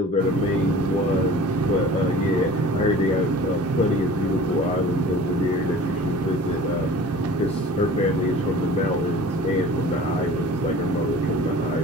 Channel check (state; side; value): normal; both; correlation 0.43